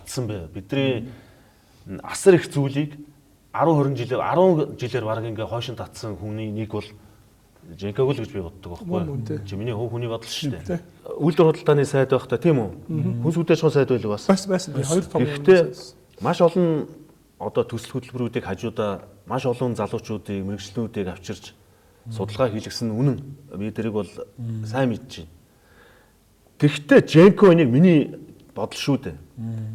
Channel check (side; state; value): both; identical; correlation 1.00